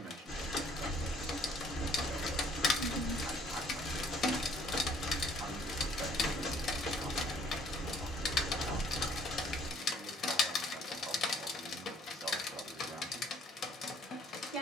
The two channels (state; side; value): normal; both; correlation 0.61